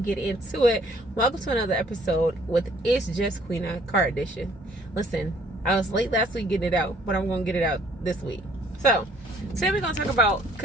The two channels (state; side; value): normal; both; correlation 0.60